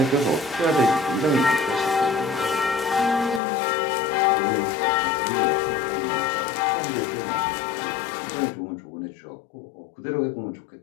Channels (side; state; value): right; drops out; at 3.4 s